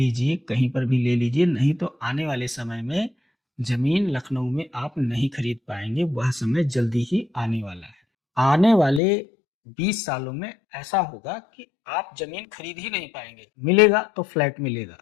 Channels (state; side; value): drops out; right; at 9.0 s